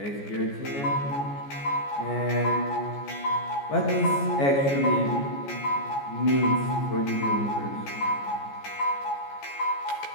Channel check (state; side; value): late; right; 14 ms